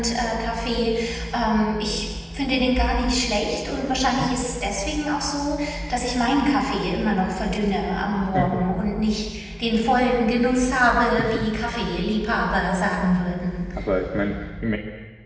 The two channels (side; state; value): both; identical; correlation 1.00